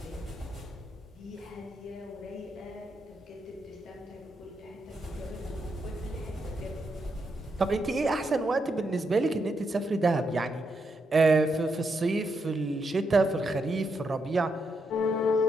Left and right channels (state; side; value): normal; both; correlation 0.81